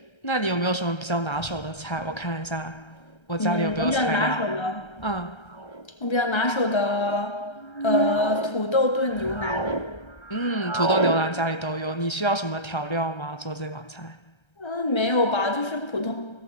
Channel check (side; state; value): right; late; 1.3 ms